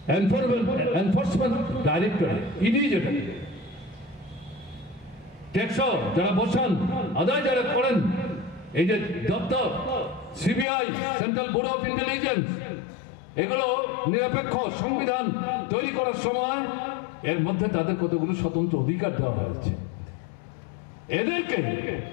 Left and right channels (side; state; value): right; drops out; at 10.7 s